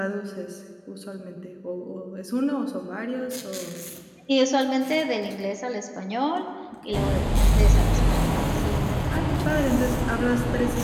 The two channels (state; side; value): identical; both; correlation 1.00